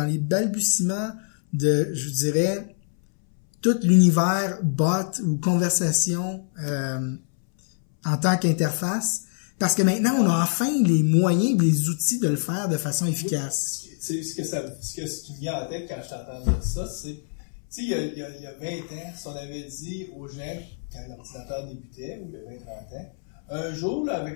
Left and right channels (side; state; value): right; silent; 62 dB below the other